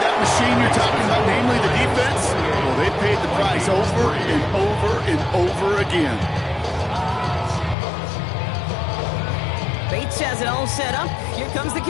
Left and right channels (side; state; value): right; drops out; at 7.8 s